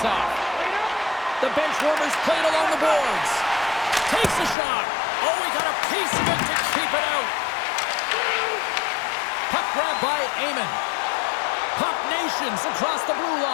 The bench warmers played along the boards. Takes a shot. Oh, he got a piece of it to keep it out. Puck grab by Amon. Puck Nations across the blue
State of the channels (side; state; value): right; drops out; at 4.5 s